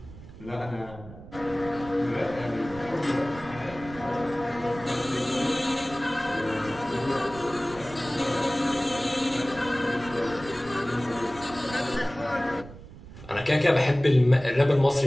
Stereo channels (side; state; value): right; noise; rumble, 17 dB below the sound